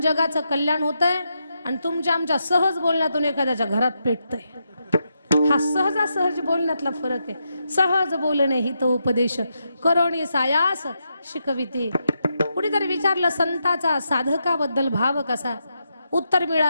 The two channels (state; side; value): inverted; both; correlation -0.83